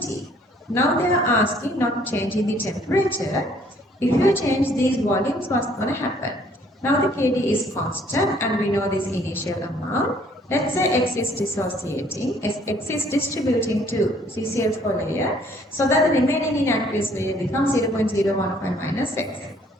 Now they are asking not changing the temperature. If you change these volumes, what's going to happen? Now the Kd is constant and we know this initial amount. Let's say X is dissociating, X is distributing to CCl4 layer, so that the remaining in aqueous layer becomes 0.015 minus X.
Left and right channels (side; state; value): both; normal; correlation 0.61